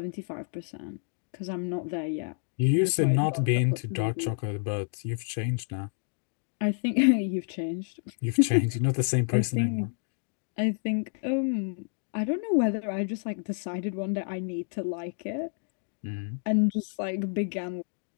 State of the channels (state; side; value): silent; right; 55 dB below the other